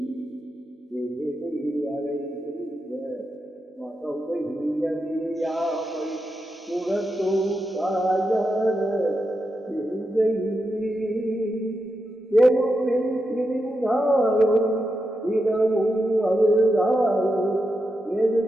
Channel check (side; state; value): both; normal; correlation 0.87